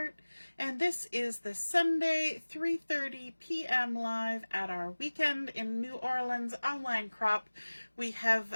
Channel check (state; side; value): inverted; both; correlation -1.00